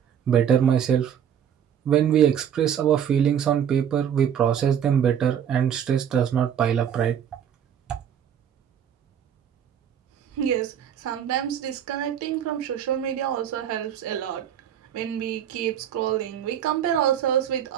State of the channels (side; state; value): left; quieter; 9.0 dB